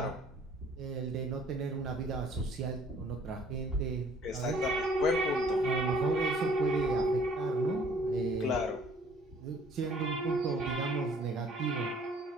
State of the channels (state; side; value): normal; both; correlation 0.57